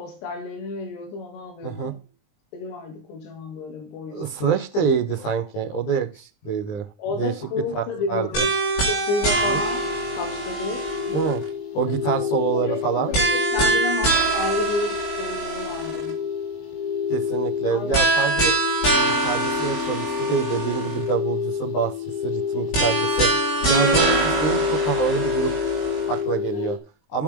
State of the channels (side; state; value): right; late; 20 ms